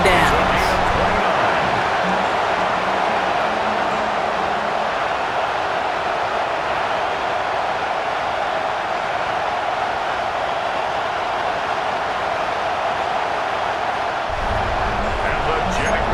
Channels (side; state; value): both; identical; correlation 1.00